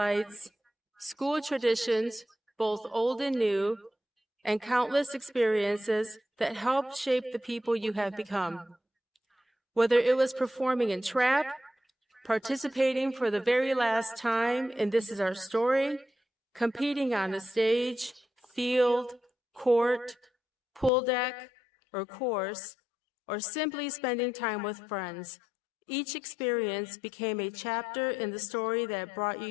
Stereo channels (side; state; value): right; drops out; at 20.9 s